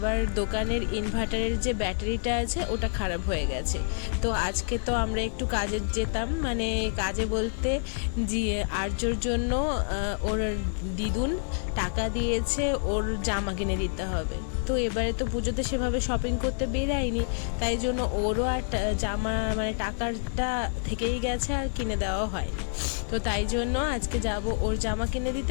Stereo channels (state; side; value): silent; right; digital silence